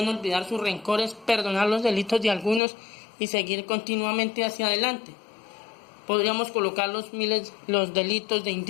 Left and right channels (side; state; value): right; drops out; at 2.6 s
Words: olvidar sus rencores, perdonar los delitos de algunos y seguir continuamente hacia adelante. Podríamos colocar los delitos de